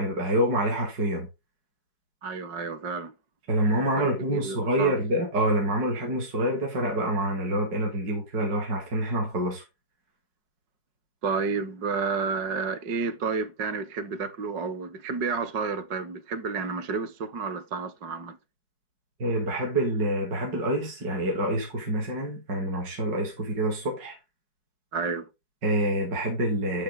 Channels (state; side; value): late; left; 4.8 ms